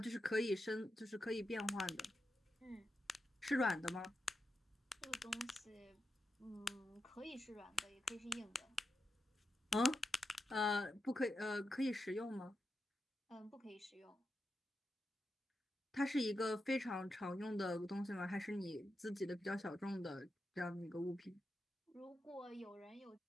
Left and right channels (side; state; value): both; normal; correlation 0.88